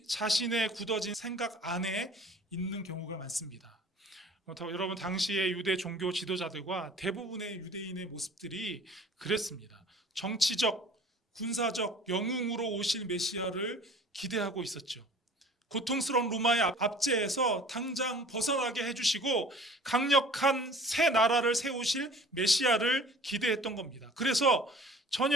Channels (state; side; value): normal; both; correlation 0.48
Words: 자신의 굳어진 생각 안에 있는 경우가 많습니다. 여러분, 당시의 유대 종교 지도자들과 대부분의 유대인의 모습들이 그랬습니다. 정치적, 군사적 영웅으로 오실 메시아를 기대하고 있었죠. 고통스러운 로마의 압제에서 당장 벗어나게 해주시고 강력한 새 나라를 세우실 메시아를 기대했던 겁니다. 그래서